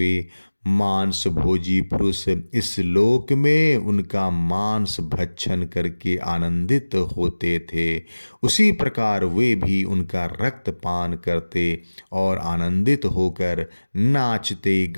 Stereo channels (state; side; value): inverted; both; correlation -1.00